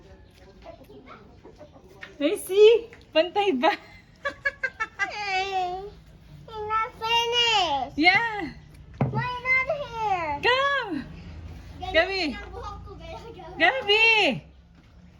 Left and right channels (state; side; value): identical; both; correlation 1.00